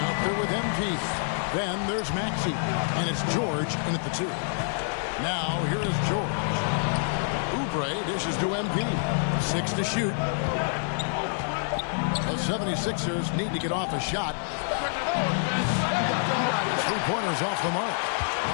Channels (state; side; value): silent; right; 60 dB below the other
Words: there with MP. Then there's Maxey, and it's George in at the 2. Now here is George. Oubre dishes to MP. 6 to shoot. The 76ers need to get off a shot. 3-pointers off the mark.